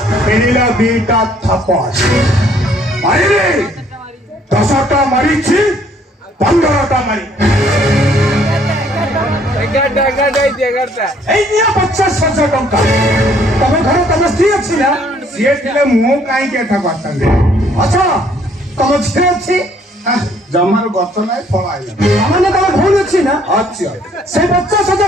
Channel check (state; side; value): normal; both; correlation 0.63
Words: दीटा थप्पड़ मारिले 10टा मारी 15टा मारी এই নিয়ে 50,000 ଟଙ୍କା ତମ ଘରେ ତମ ସ୍ତ୍ରୀ ଅଛି ନା ସିଏ ଥିଲେ ମୁଁ କାହିଁକି ଏଠା କରିଥାନ୍ତି ଆଚ୍ଛା ତମ ଝିଅ ଅଛି ଜମାରୁ ଗଛ ନାହିଁ ଫଳ ଆଇଲା ମାନେ ତମ ଭଉଣୀ ଅଛି ନା ଅଛି ସେ 50,000